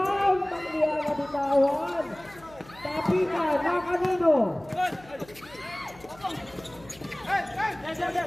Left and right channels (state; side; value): noise; left; hum, 23 dB below the sound